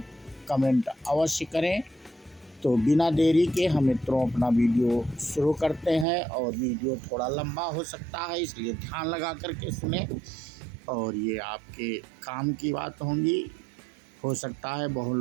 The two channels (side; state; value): left; drops out; at 6.1 s